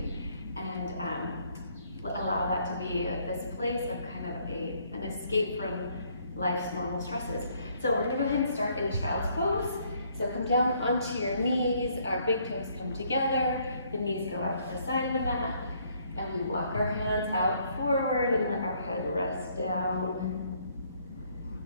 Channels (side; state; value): both; inverted; correlation -0.67